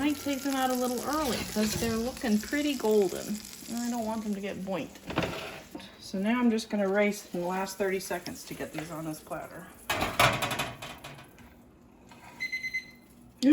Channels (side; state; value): both; identical; correlation 1.00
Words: take them out a little early because they're looking pretty golden, and I don't want them to get burnt. So now I'm just gonna race in the last 30 seconds to get these on this platter.